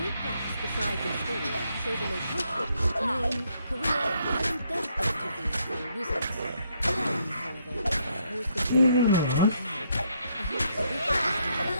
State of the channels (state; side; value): inverted; both; correlation -0.73